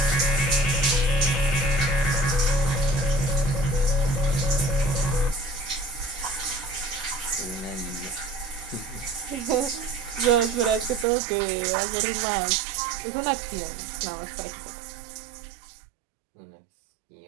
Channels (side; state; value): left; drops out; at 11.1 s